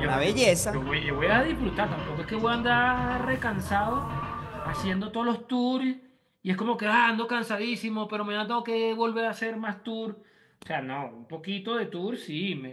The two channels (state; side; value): identical; both; correlation 1.00